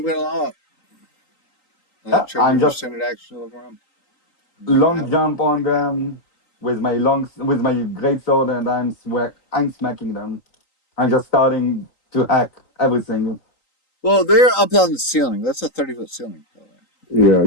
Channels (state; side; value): late; right; 3.9 ms